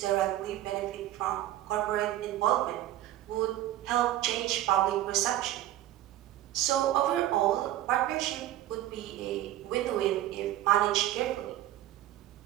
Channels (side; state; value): left; quieter; 13.9 dB